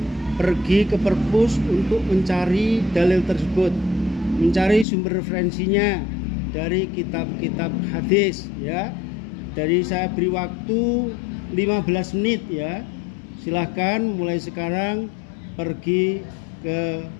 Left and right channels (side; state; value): right; drops out; at 4.9 s